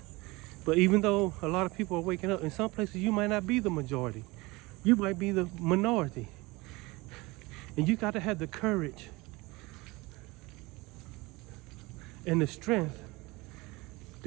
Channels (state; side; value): quieter; left; 23.0 dB